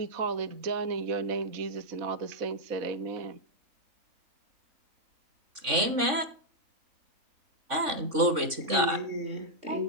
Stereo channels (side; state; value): left; late; 3.6 ms